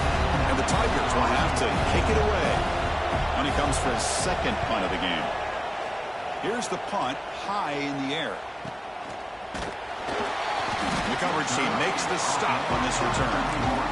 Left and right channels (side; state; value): both; identical; correlation 1.00